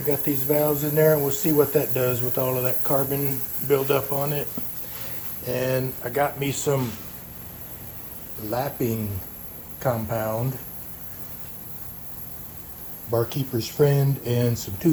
got these valves in there, and we'll see what that does with all of that carbon buildup on it. And I got me some lapping compound, barkeeper's friend, and some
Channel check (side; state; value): both; identical; correlation 1.00